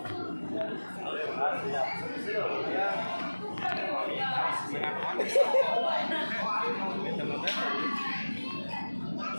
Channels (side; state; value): both; inverted; correlation -1.00